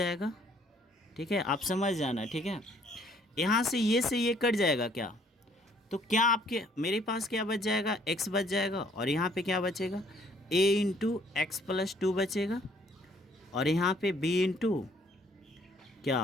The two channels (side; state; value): both; normal; correlation 0.62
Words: ठीक है, आप समझ जाना। ठीक है, यहाँ से ये कट जाएगा क्या, तो क्या आपके मेरे पास क्या बच जाएगा, x बच जाएगा, और यहाँ पे क्या बचेगा, a इंटू एक्स प्लस 2 बचेगा, और यहाँ पे b इंटू